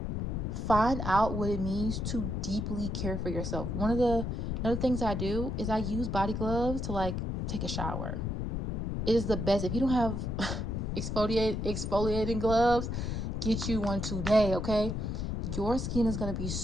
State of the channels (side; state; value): left; noise; rumble, 2 dB below the sound